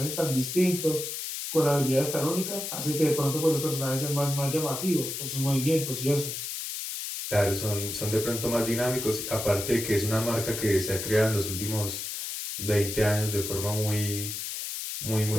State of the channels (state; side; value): noise; left; hiss, 5 dB below the sound